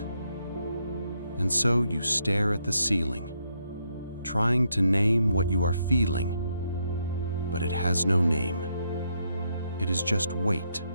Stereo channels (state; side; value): inverted; both; correlation -0.77